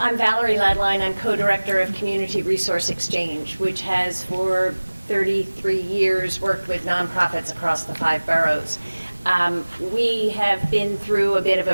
Valyrie Laedlein. I'm co-director of Community Resource Exchange, which has for 33 years worked with nonprofits across the 5 boroughs. We have been through a bit of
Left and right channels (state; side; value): inverted; both; correlation -1.00